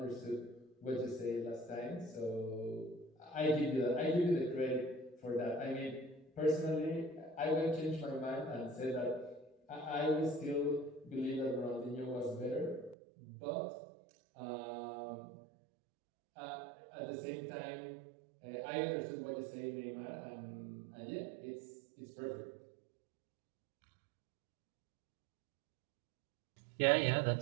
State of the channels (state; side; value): drops out; left; at 13.0 s